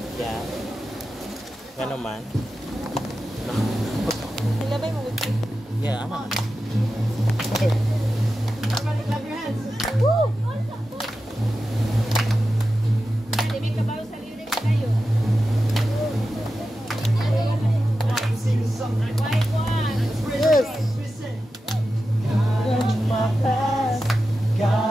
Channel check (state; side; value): normal; both; correlation 0.92